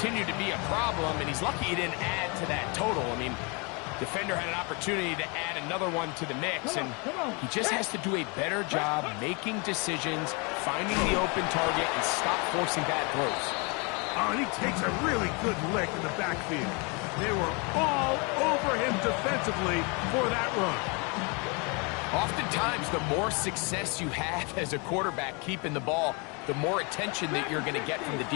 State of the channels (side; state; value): right; quieter; 31.5 dB